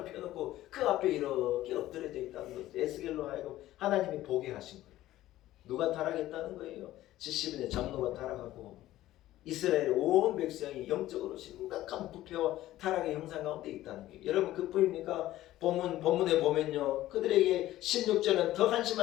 펴놓고 그 앞에 이렇게 엎드려져 있다는 거죠. 에스겔로 하여금 하나님이 보게 하신 거예요. 누가 타락했다는 거예요? 70인의 장로가 타락하고 이스라엘의 온 백성이 영적으로 심각한 부패와 타락의 형상 가운데 있다는 거예요. 여러분, 그뿐입니까? 본문에 보면요, 그들에게 16절은 더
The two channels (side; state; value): right; quieter; 14.9 dB